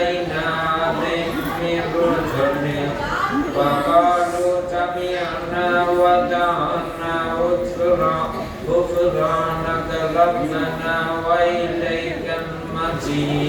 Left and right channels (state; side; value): identical; both; correlation 1.00